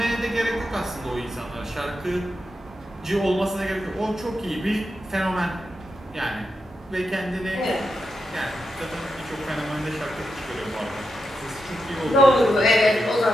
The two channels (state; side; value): normal; both; correlation 0.86